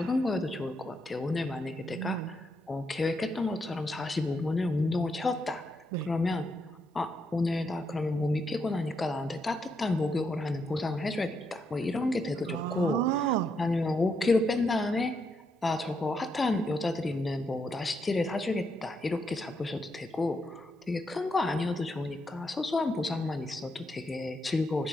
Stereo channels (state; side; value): normal; both; correlation 0.80